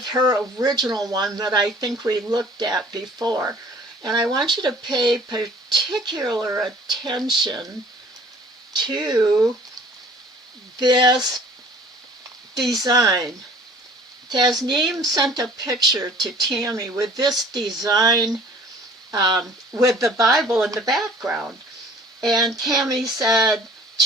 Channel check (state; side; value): normal; both; correlation 0.51